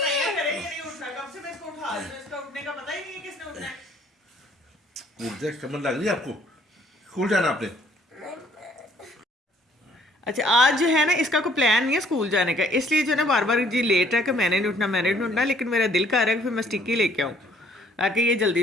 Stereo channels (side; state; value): both; normal; correlation 0.61